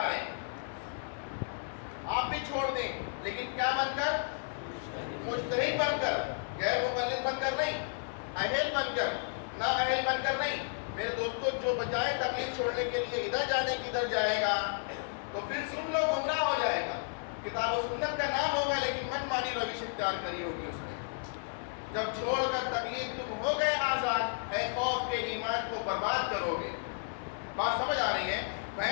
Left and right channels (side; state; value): right; silent; digital silence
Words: رہے. آپ بھی چھوڑ دیں لیکن کیا بن کر؟ مجتہد بن کر. غیر مقلد بن کر نہیں، اہل بن کر. نہ اہل بن کر نہیں. میرے دوستوں جو بجائے تقلید چھوڑنے کے لیے ادھر جانے کی ادھر جائے گا تو پھر سن لو گمراہ ہو جائے گا. کتاب و سنت کا نام ہوگا لیکن من مانی روش اختیار کری ہوگی اس نے. جب چھوڑ کر تقلید تم ہو گئے آزاد، اے خوف کے ایمان کو برباد کرو گے. بات سمجھ آ رہی ہے؟